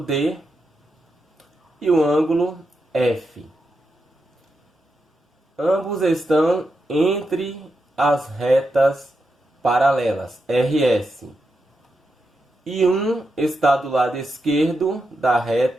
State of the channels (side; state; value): both; normal; correlation 0.86